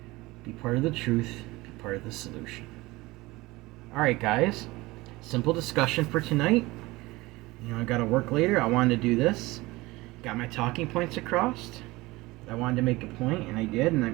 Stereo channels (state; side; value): quieter; left; 20.8 dB